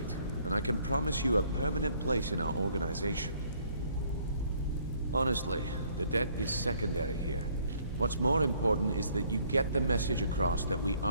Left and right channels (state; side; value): inverted; both; correlation -0.63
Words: and I can promise you a permanent place in our organization. Honestly, the debt is secondary here. What's more important is that you get the message across that we